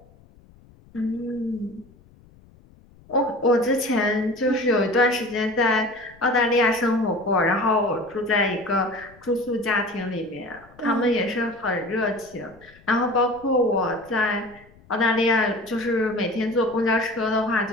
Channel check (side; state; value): left; noise; rumble, 27 dB below the sound